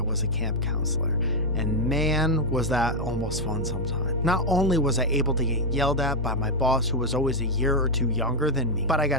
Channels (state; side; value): normal; both; correlation 0.01